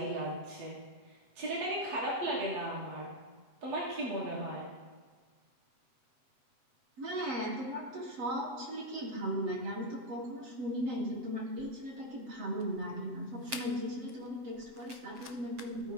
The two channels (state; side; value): late; left; 7.6 ms